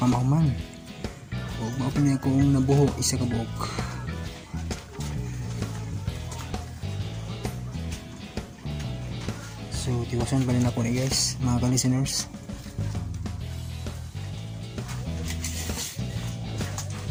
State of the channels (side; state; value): both; identical; correlation 1.00